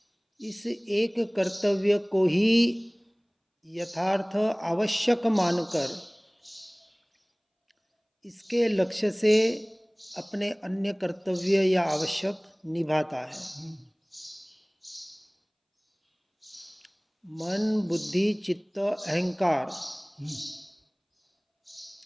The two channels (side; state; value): both; identical; correlation 1.00